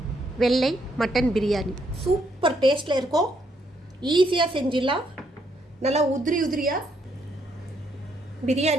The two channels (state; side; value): normal; both; correlation 0.73